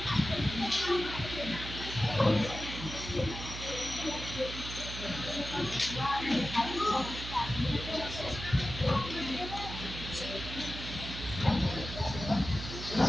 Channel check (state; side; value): noise; right; hum, 8 dB below the sound